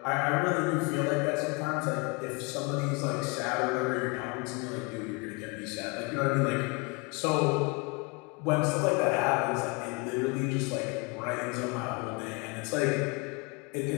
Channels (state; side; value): quieter; right; 28.9 dB